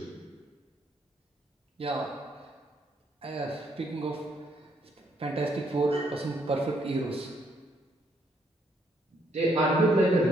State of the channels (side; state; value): both; normal; correlation 0.72